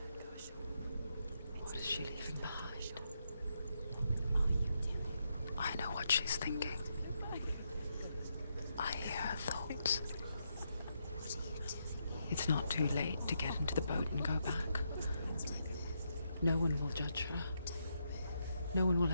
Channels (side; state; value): both; inverted; correlation -0.80